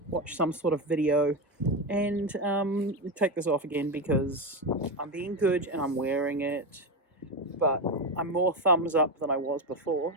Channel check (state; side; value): normal; both; correlation 0.14